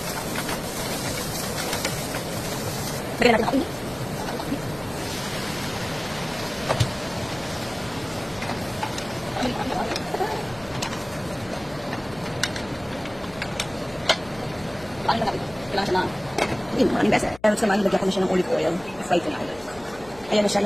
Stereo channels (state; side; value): noise; left; hum, 22 dB below the sound